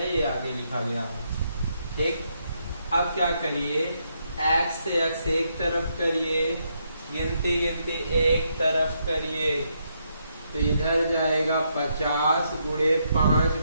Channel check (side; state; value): both; inverted; correlation -0.77